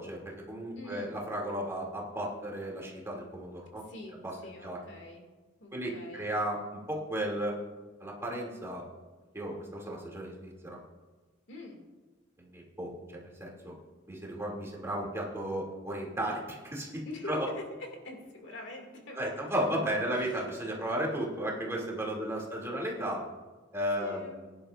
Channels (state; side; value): normal; both; correlation 0.37